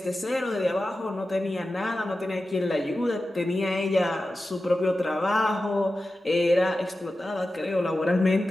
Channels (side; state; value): both; normal; correlation 0.93